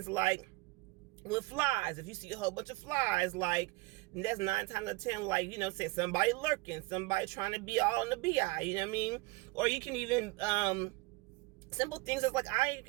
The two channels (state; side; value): quieter; left; 23.5 dB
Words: like with flies, if you see a whole bunch of flies, like, that's 9 times out of 10, like, you know, say somebody lurking, somebody trying to be all in the BI, you know what I mean? Or you can even simple things as like, I